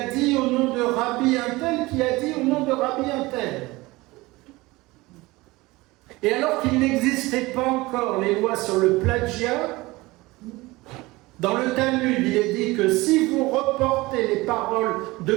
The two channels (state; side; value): quieter; left; 21.2 dB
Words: dit au nom de Rabbi un tel qui a dit au nom de Rabbi un tel ». Et alors qu'il n'existait pas encore les lois sur le plagiat, dans le Talmud, il est dit que si vous reportez les paroles de